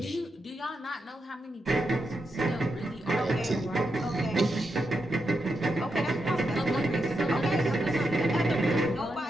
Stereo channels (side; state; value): both; normal; correlation 0.85